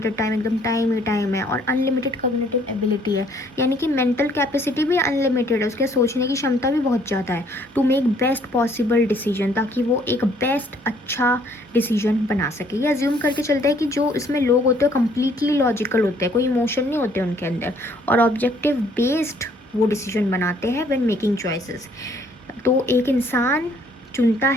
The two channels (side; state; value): both; normal; correlation 0.63